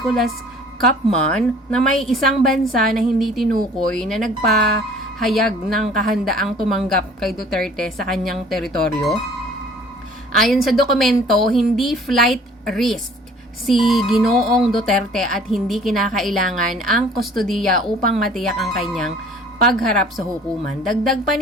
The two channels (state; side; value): normal; both; correlation 0.51